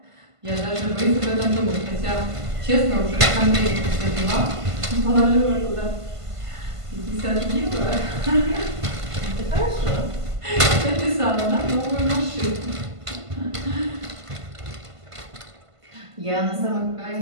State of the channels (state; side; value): late; left; 1.5 ms